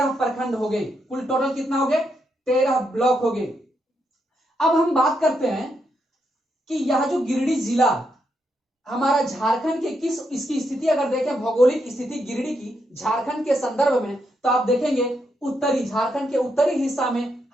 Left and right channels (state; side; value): normal; both; correlation 0.80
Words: प्रखंड हो गए, कुल टोटल कितना हो गए, 13 ब्लॉक हो गए। अब हम बात करते हैं कि यह जो गिरिडीह जिला हमारा झारखंड के किस, इसकी स्थिति अगर देखें, भौगोलिक स्थिति गिरिडीह की झारखंड के संदर्भ में, तो आप देखेंगे उत्तरी, झारखंड के उत्तरी हिस्सा में